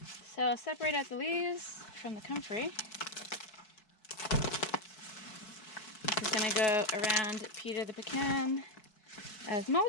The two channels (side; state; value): right; late; 4.7 ms